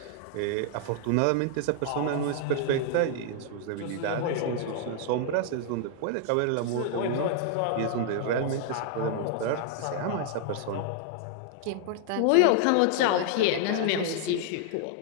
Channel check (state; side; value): different; both; correlation 0.00